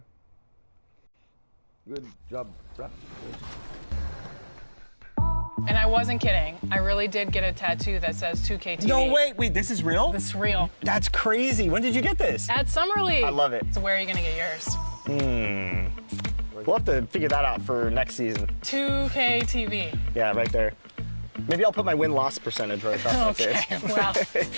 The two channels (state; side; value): inverted; both; correlation -1.00